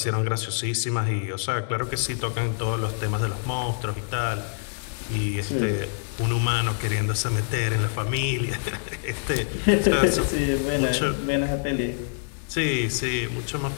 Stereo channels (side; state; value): right; silent; digital silence